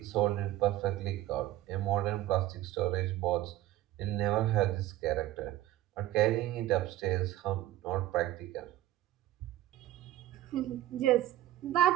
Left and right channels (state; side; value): quieter; left; 14.4 dB